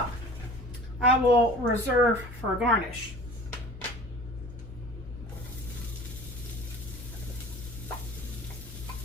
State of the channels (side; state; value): both; normal; correlation 0.43